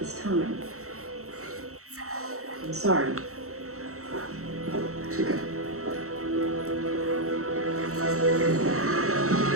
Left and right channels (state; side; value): late; left; 0.64 ms